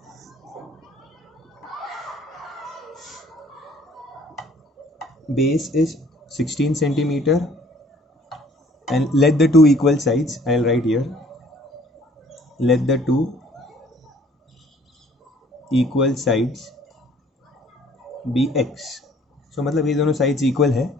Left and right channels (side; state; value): both; normal; correlation 0.57